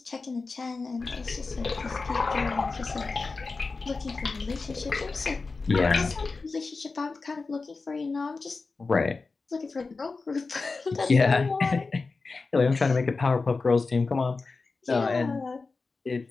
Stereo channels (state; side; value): quieter; right; 4.1 dB